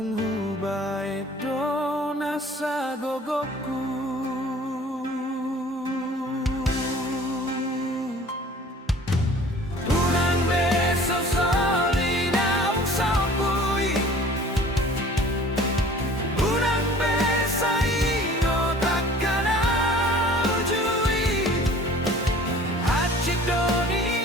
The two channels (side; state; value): both; normal; correlation 0.48